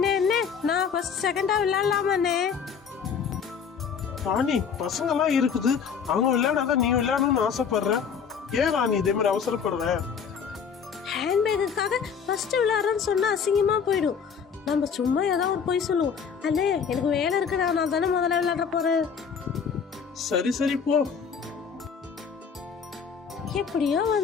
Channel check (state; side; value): quieter; right; 6.6 dB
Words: அண்ணே, நான் ஃபர்ஸ்ட் செகண்டா விளையாடலாமா அண்ணே? ராணி, பசங்க எல்லாம் இருக்குது, அவங்க விளையாடாதான் நீ விளையாடணும்னு ஆசைப்படுற. ஏன் ராணி இதே மாதிரி அவசரப்படுற? ஹேண்ட்பேக்குக்காக ஃபர்ஸ்ட் விளையாடுறேன்னு சொன்னா அசிங்கமா போயிடும். நம்ம சும்மா ஏதாவது ஒரு பொய் சொல்லுவோம். அண்ணே எனக்கு வேலை இருக்குடா, நான் தானே முதல்ல விளையாட போறேன். சரி சரி போ. எப்படியோ